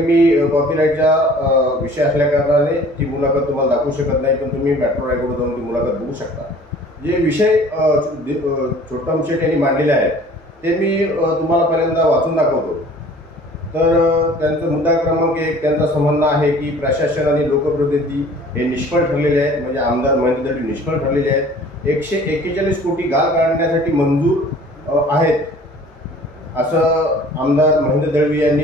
कॉपीराईटचा विषय असल्या कारणाने ती मुलाखत तुम्हाला दाखवू शकत नाही, पण तुम्ही मेट्रो रायगडवर जाऊन ती मुलाखत बघू शकता. जे विषय छोटम शेठ यांनी मांडलेले आहेत ते मी तुम्हाला पहिल्यांदा वाचून दाखवतो. तर त्यांचा मुद्दा क्रमांक 1 त्यांचं म्हणणं आहे की प्रशासन आणि लोकप्रतिनिधी हे निष्फळ ठरलेले आहेत, म्हणजे आमदार महेंद्र दळवी निष्फळ ठरलेले आहेत. 141 कोटी गाळ काढण्यासाठी मंजूर आहेत असं आमदार महेंद्र दळवी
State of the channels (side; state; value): both; normal; correlation 0.49